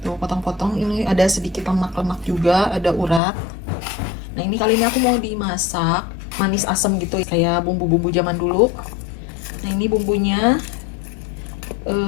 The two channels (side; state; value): right; drops out; at 3.2 s